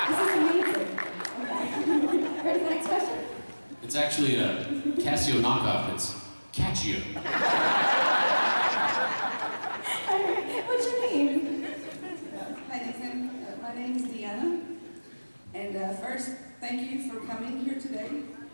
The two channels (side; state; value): both; inverted; correlation -1.00